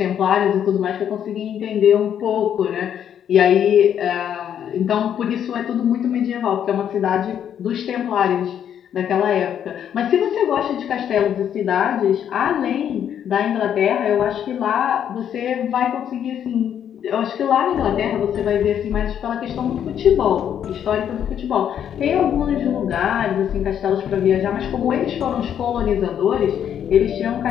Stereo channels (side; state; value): right; quieter; 9.3 dB